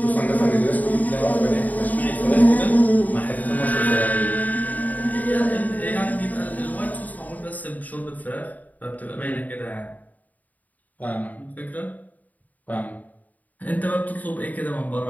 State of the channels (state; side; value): late; right; 0.077 ms